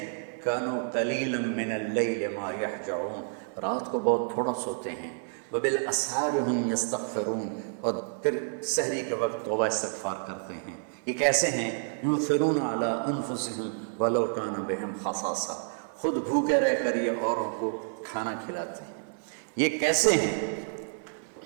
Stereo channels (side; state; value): left; silent; digital silence